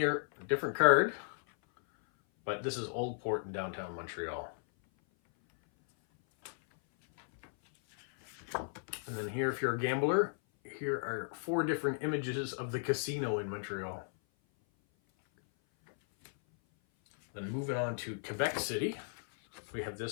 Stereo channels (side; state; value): right; silent; 54 dB below the other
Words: a different card, but this is Old Port in downtown Montreal. And then here, if you're a gambler, here are 4 different images of the casino in Montreal. Then moving on to Quebec City, we have